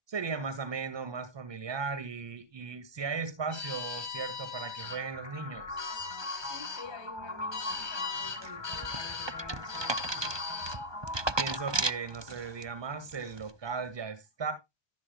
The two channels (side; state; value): left; late; 1.2 ms